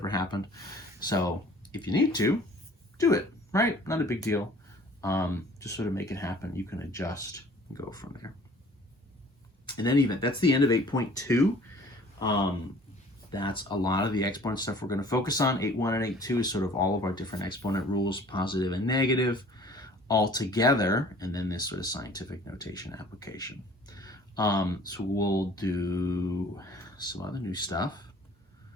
happened. So if you need to, do it, right? Not a big deal. Just sort of make it happen. You can adjust and go from there. In any event, that's the end of 8.2. That's a lot of the exponent stuff we're going to focus on. 8.1 and 8.2 is sort of all of our different exponent rules, positive and negative, all together, and then this sort of scientific notation application. So we'll do some other new stuff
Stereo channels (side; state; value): both; normal; correlation 0.51